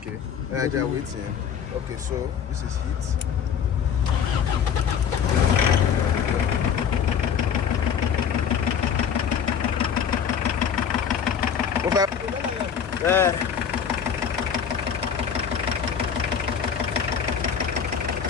I just waiting. Okay, so this is heat. Yeah.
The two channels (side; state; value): right; quieter; 7.6 dB